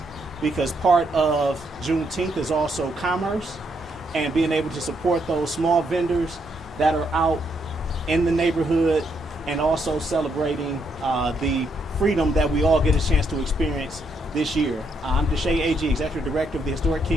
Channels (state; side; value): normal; both; correlation 0.76